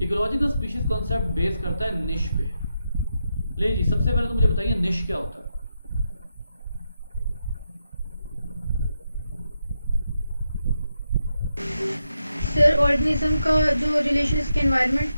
Ecological species concept base करता है निश पे। ले जी, सबसे पहले तो मुझे बताइए निश क्या होता है। सर ऑर्गेनिज्म का जो रिलेशन इसके एनवायरनमेंट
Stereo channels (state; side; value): inverted; both; correlation -0.85